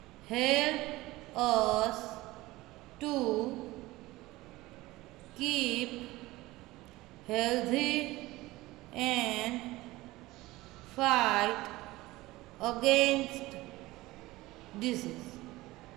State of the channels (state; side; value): quieter; left; 19.0 dB